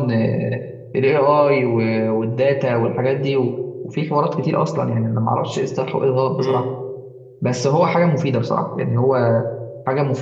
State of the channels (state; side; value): identical; both; correlation 1.00